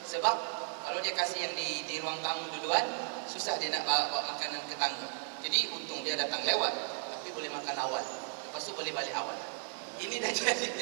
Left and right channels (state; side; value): silent; left; 55 dB below the other